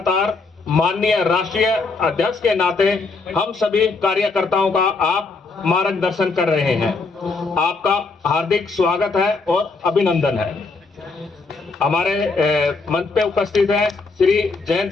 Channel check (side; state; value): right; quieter; 4.0 dB